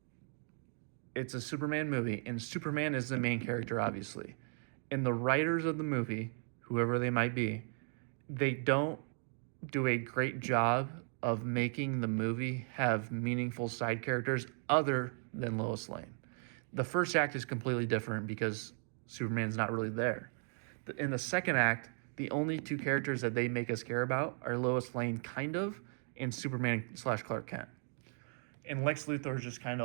it's a Superman movie, and Superman is the main character, obviously. And the writers of the movie, whoever they might be, they don't do a great job of making the movie have meaningful side characters other than Lois Lane. The first act is completely different because Superman's not really there. In the second act, the only two characters that they make us care about are Lois Lane, kind of, and Superman / Clark Kent. And Lex Luthor is just kind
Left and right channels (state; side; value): silent; left; 54 dB below the other